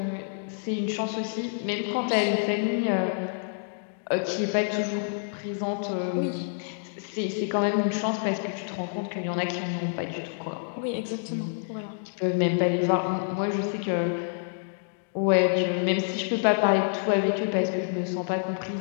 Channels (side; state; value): right; silent; digital silence